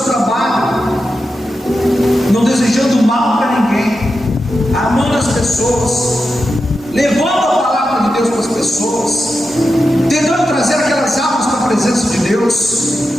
trabalho, não desejando mal para ninguém, amando as pessoas, levando a palavra de Deus para as pessoas, tentando trazer aquelas almas para a presença de Deus.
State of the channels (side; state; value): both; normal; correlation 0.89